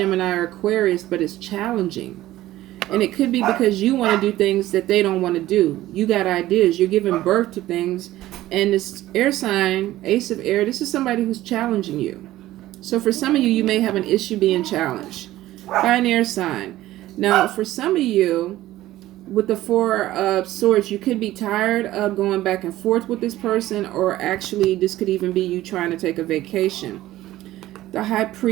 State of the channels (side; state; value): left; quieter; 15.4 dB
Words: or Aquarius, but it's challenging. And it could be because you want to do things that they don't want to do. You got ideas. You're giving birth to things. And this air sign, Ace of Air, this is somebody who's challenging you. So for some of you, you may have an issue being challenged by an air sign. Now, for some of you, with the Four of Swords, you could be tired of going back and forth with this person, or actually this could even be you trying to take a vacation. The High